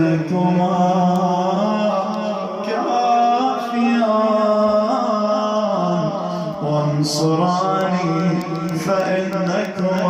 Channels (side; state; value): both; identical; correlation 1.00